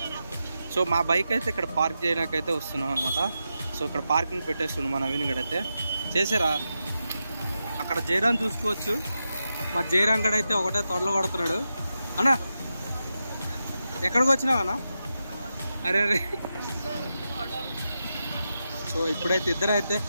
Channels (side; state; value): both; inverted; correlation -0.89